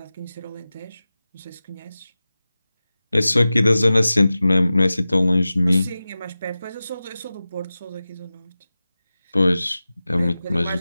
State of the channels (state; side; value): inverted; both; correlation -0.96